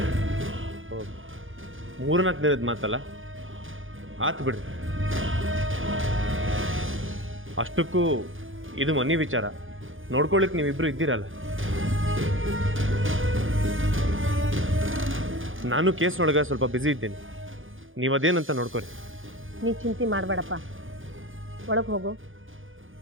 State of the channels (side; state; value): left; late; 0.58 ms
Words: ಮೂರ್ನಾಲ್ಕು ದಿನದ ಮಾತಲ್ಲ, ಆತು ಬಿಡ್ರಿ. ಅಷ್ಟಕ್ಕೂ ಇದು ಮನೆ ವಿಚಾರ, ನೋಡ್ಕೊಳ್ಳಿಕ್ಕೆ ನೀವಿಬ್ರು ಇದ್ದೀರಲ್ಲ. ನಾನು ಕೇಸ್ನೊಳಗೆ ಸ್ವಲ್ಪ ಬ್ಯುಸಿ ಇದ್ದೇನೆ, ನೀವು ಅದೇನಂತ ನೋಡ್ಕೊರಿ. ನೀ ಚಿಂತೆ ಮಾಡಬೇಡಪ್ಪ, ಒಳಗೆ ಹೋಗು,